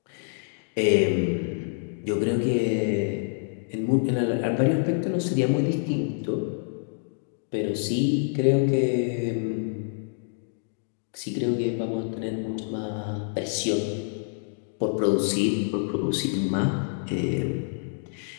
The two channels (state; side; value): silent; right; digital silence